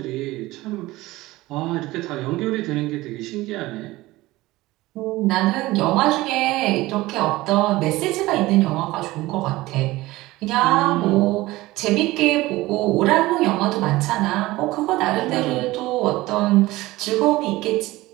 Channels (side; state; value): left; quieter; 18.8 dB